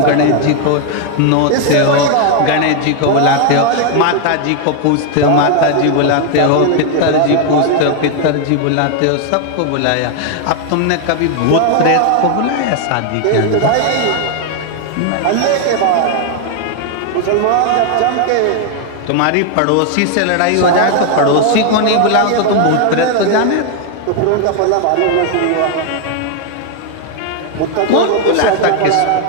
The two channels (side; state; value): both; different; correlation 0.00